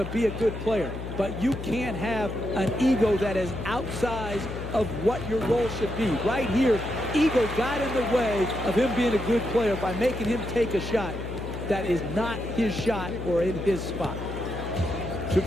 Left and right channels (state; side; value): noise; left; hum, 8 dB below the sound